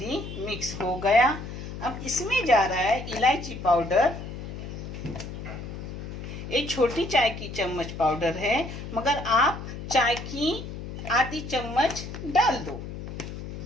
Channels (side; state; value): left; noise; hum, 9 dB below the sound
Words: मिक्स हो गया। अब इसमें जा रहा है इलायची पाउडर। एक छोटी चाय की चम्मच पाउडर है, मगर आप चाय की आधी चम्मच डाल दो।